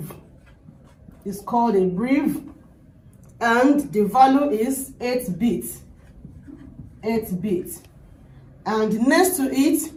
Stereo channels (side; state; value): both; identical; correlation 1.00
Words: It's called a breve, and the value is 8 bits. 8 bits. And next to it,